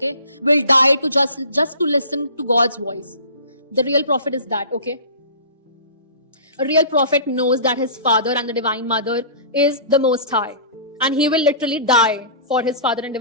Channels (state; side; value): inverted; both; correlation -0.40